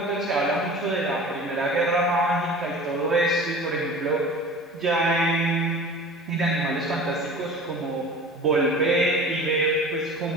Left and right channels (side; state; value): both; normal; correlation 0.39